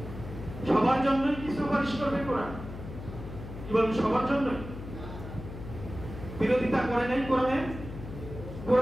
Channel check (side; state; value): left; noise; hum, 11 dB below the sound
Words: সবার জন্য কি সুপারিশ করবে কোরআন? কি বলেন, সবার জন্য? বিরোধিতা করে নাই কোরআনে?